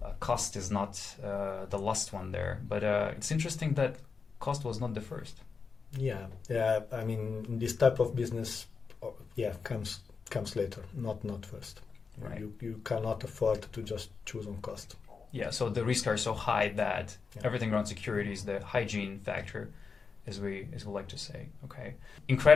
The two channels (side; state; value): right; quieter; 5.2 dB